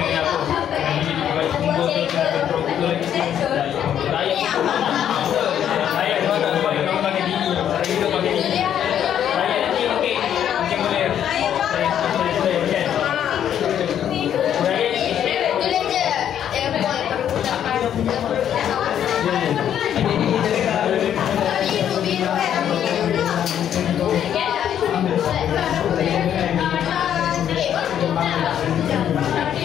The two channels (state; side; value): quieter; right; 9.8 dB